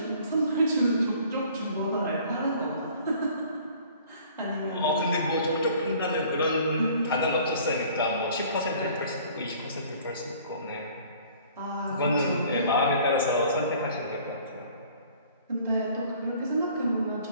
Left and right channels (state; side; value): inverted; both; correlation -0.53